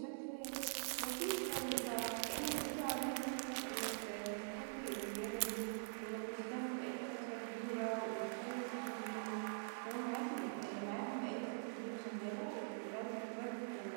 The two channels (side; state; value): left; silent; digital silence